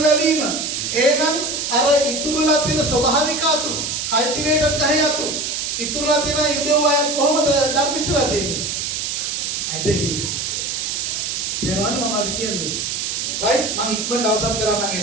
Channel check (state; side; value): noise; right; hiss, 2 dB below the sound